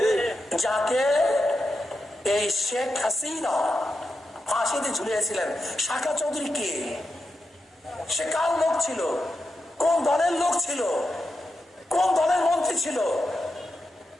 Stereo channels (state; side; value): normal; both; correlation 0.88